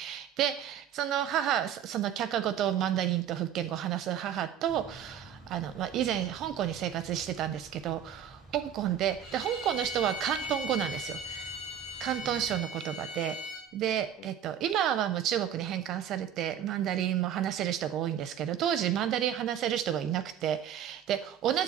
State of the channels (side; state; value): left; quieter; 9.4 dB